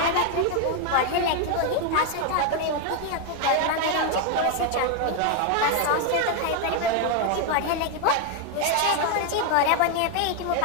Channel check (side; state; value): both; different; correlation 0.01